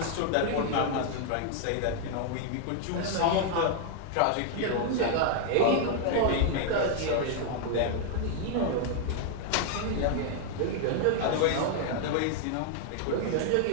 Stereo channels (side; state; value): both; different; correlation 0.00